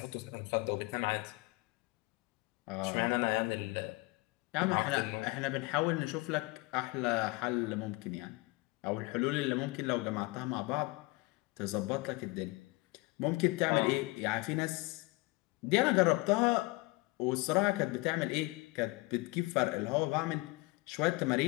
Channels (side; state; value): right; quieter; 24.1 dB